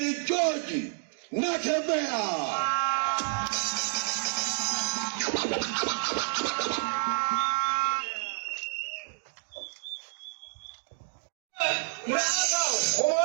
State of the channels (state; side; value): silent; left; digital silence